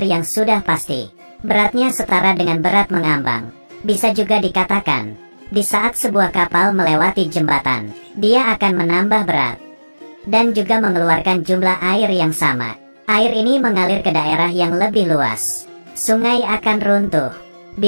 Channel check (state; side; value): inverted; both; correlation -1.00